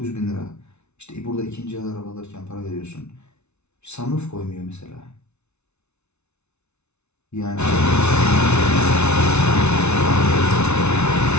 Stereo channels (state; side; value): late; right; 0.81 ms